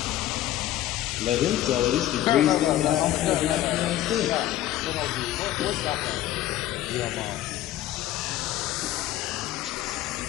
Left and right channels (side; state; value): right; quieter; 13.5 dB